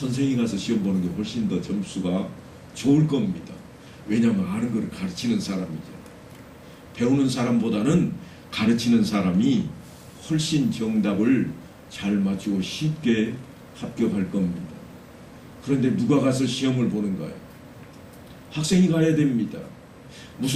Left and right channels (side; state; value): both; identical; correlation 1.00